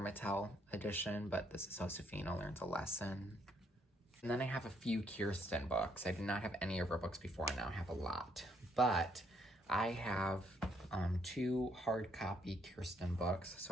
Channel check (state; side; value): normal; both; correlation 0.71